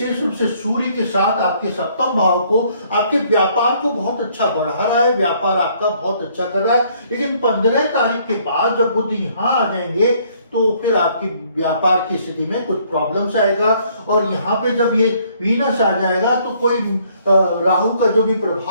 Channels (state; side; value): inverted; both; correlation -0.64